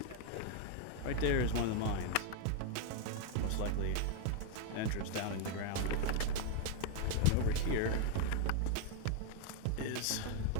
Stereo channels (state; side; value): different; both; correlation 0.00